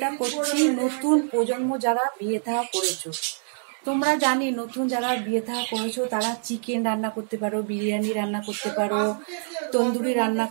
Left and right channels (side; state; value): left; silent; digital silence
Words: করছি নতুন প্রজন্ম যারা বিয়ে থা করেছো। তোমরা জানি নতুন যারা বিয়ে থা করেছো তারা চিকেন রান্না করতে পারো, বিরিয়ানি রান্না করতে পারো, তন্দুরি রান্না